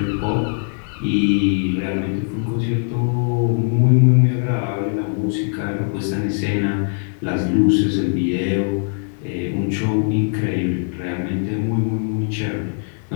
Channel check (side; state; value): right; silent; digital silence